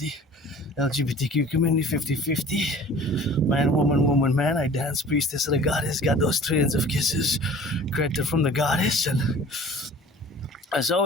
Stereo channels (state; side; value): normal; both; correlation 0.46